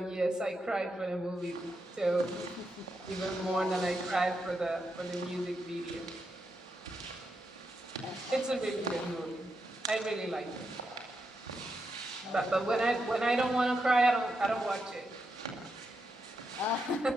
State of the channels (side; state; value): both; normal; correlation 0.84